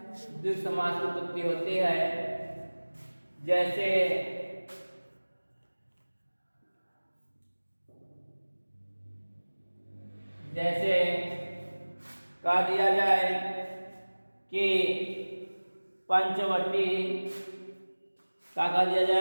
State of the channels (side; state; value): both; inverted; correlation -1.00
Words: द्विग समास की उत्पत्ति होती है। जैसे जैसे कह दिया जाए कि पंचवटी, क्या कह दिया